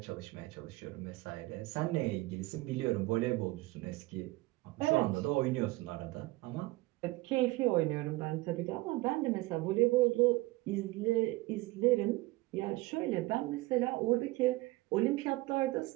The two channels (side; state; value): left; quieter; 20.8 dB